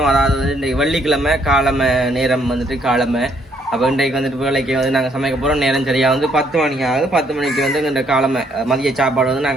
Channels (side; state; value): both; normal; correlation 0.68